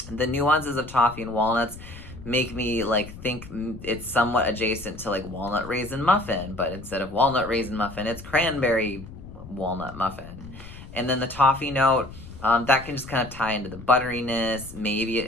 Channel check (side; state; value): left; noise; rumble, 15 dB below the sound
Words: The nuances of toffee and walnuts make me like think it's somewhat adjacent to like walnut raisin muffin, but instead of walnut raisin muffin, it's cranberry walnut muffin. And then the toffee note, that can just kind of tie into the butteriness. Maybe it